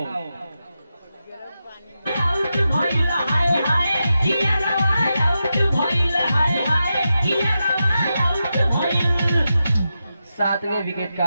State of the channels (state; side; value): inverted; both; correlation -0.89